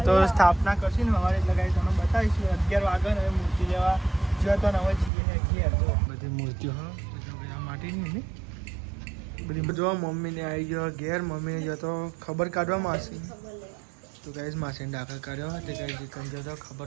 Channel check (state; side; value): drops out; left; at 5.1 s